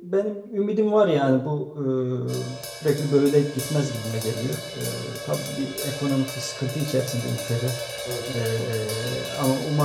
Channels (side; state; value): both; identical; correlation 1.00